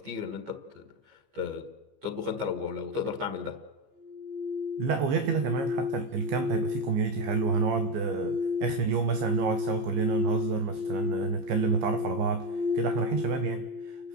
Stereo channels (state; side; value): late; left; 15 ms